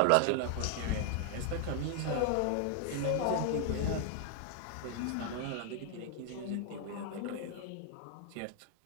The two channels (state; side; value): different; both; correlation 0.00